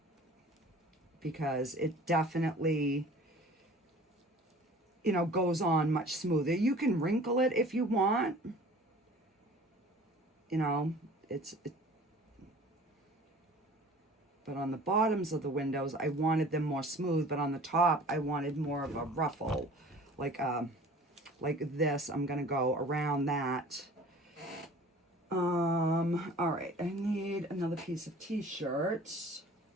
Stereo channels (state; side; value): normal; both; correlation 0.46